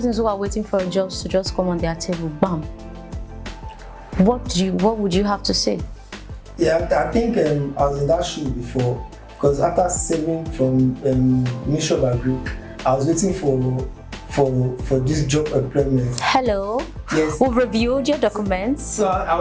who are waiting for jobs to just come on their table. Bam. What would you have to say? Yeah, I think I was in that shoe before, because after saving from Ministry of Agri, I was waiting for this job employment. Hello. Yes. We've reviewed your documents. So I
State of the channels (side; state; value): both; identical; correlation 1.00